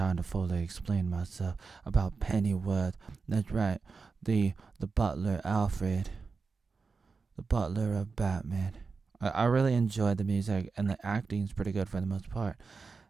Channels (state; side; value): quieter; left; 4.7 dB